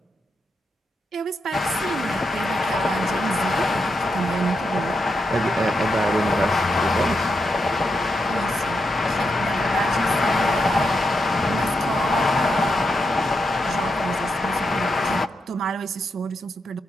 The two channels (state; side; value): normal; both; correlation 0.84